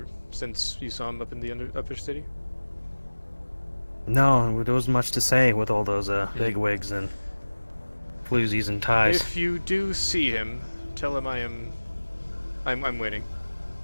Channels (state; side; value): inverted; both; correlation -1.00